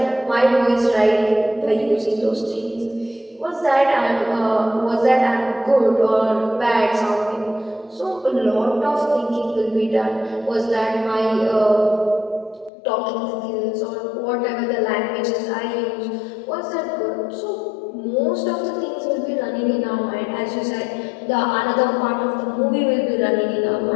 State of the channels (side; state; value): right; drops out; at 12.7 s